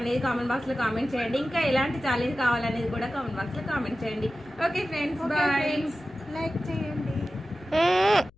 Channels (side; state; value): left; noise; hum, 30 dB below the sound